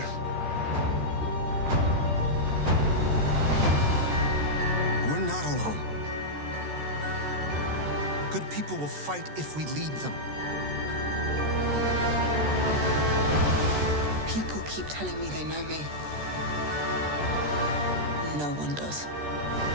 We're not alone. Good people will fight if we lead them. People keep telling me they know me. No one does.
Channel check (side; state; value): left; late; 14 ms